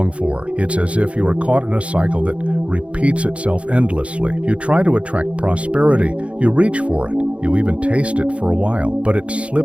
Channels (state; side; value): late; left; 0.062 ms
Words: for. It's as if you are caught in a cycle that repeats itself endlessly. You try to attract prosperity, you reach for it, you even taste it for a while, but it